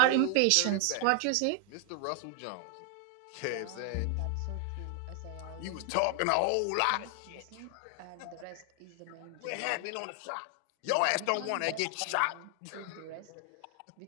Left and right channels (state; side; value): different; both; correlation 0.00